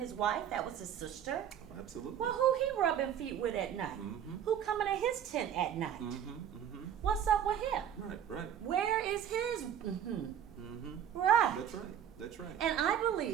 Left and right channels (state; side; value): quieter; left; 9.4 dB